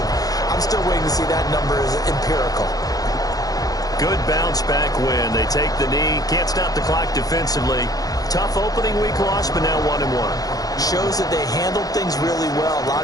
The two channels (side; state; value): right; late; 0.18 ms